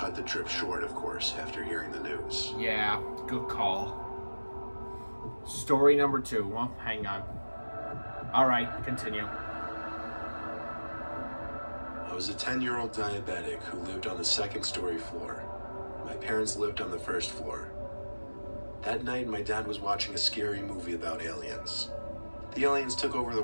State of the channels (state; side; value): inverted; both; correlation -1.00